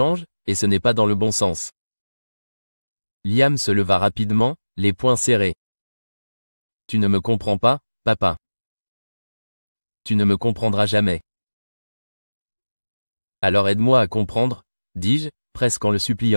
et ce n'est pas dans le bon sens. Liam se leva rapidement, les poings serrés. Tu ne me comprends pas, papa. Tu ne me comprendras jamais. Alors aide-moi à comprendre, dis-je, presque en le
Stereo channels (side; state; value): both; inverted; correlation -1.00